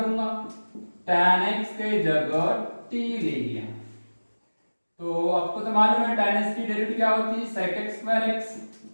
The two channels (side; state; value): both; inverted; correlation -1.00